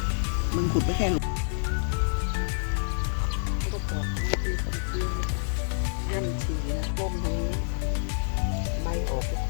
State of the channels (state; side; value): silent; right; digital silence